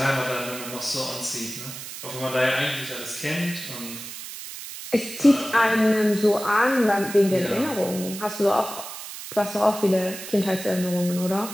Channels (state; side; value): noise; right; hiss, 11 dB below the sound